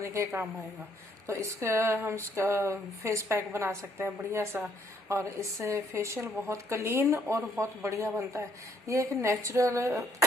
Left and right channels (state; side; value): normal; both; correlation 0.67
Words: के काम आएगा। तो इसका हम इसका फेस पैक बना सकते हैं बढ़िया सा, और इससे फेशियल बहुत क्लीन और बहुत बढ़िया बनता है। ये एक नेचुरल